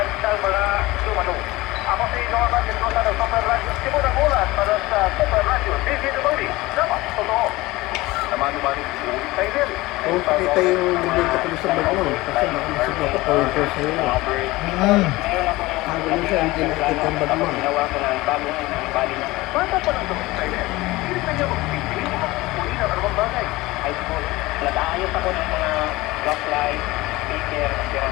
ng mga dumalo. Ako si Norman Mendoza ng Super Radio Cebu ng Ulat para sa Super Radio DZWD. Dapat totoo. Naman-naman yung excited. Oo, pakita yung dito ko sa bag mo. Kasi makamasig ako pointer sa'yo. Sabi mo siya, hindi nakikita ang bag mo. Bata pa lang ito excited. Hindi na niya magpipili o magpupuli ng anumang bagay. High school. Nag-aayos ako ng mga rock light, speaker, at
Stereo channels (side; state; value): right; quieter; 20.1 dB